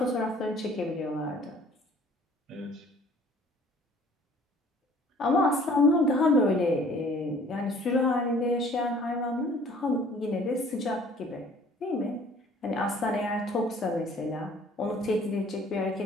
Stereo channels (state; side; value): normal; both; correlation 0.54